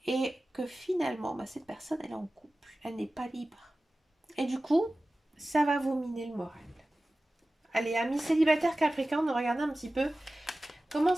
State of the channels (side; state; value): both; normal; correlation 0.96